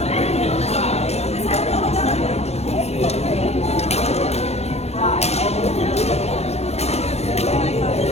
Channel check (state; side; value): late; right; 0.31 ms